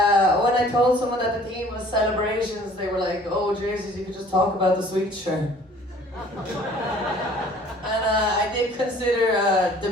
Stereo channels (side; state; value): both; normal; correlation 0.53